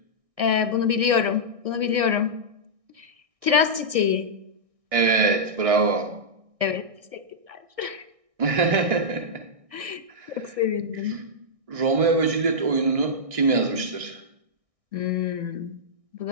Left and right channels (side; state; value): left; late; 1.6 ms